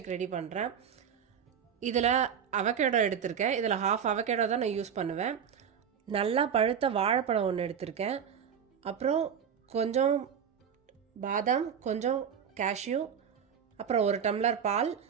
ரெடி பண்ணுறேன். இதில் அவகேடோ எடுத்திருக்கேன். இதில் ஹாஃப் அவகேடோ தான் நான் யூஸ் பண்ணுவேன். நல்லா பழுத்த வாழைப்பழம் ஒன்று எடுத்திருக்கேன். அப்புறம் கொஞ்சம் பாதாம், கொஞ்சம் கேஷ்யூ, அப்புறம் ஒரு டம்ளர் பால்,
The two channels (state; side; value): quieter; left; 7.7 dB